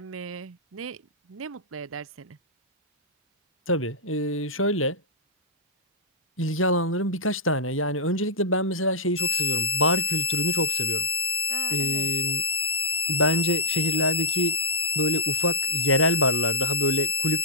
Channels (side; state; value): both; normal; correlation -0.09